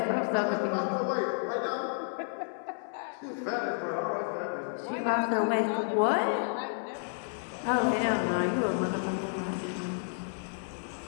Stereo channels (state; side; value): silent; right; 57 dB below the other